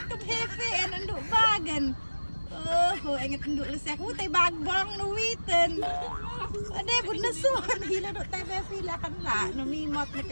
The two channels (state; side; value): inverted; both; correlation -1.00